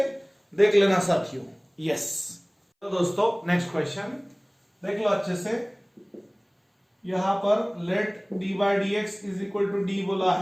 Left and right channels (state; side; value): identical; both; correlation 1.00